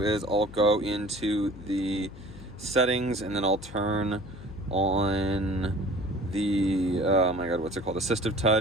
I'll go into the settings and then I'll turn on the, oh my God, what's it called? Assistive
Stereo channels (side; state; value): left; noise; hum, 16 dB below the sound